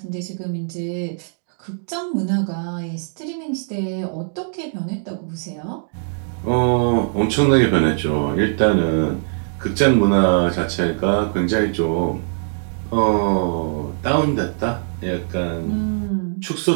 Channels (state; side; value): silent; left; 65 dB below the other